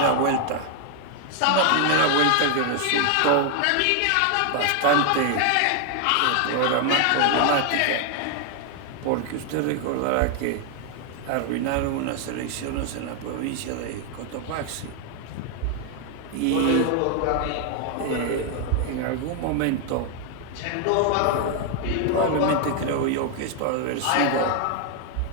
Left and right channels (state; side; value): different; both; correlation 0.00